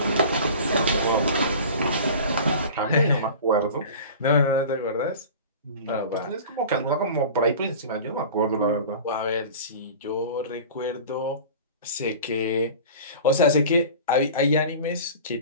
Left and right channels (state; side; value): inverted; both; correlation -0.38